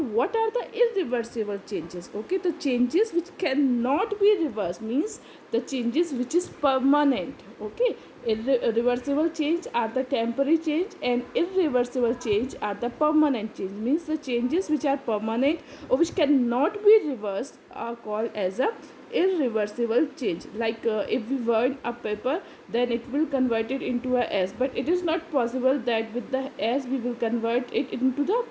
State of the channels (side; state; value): both; identical; correlation 1.00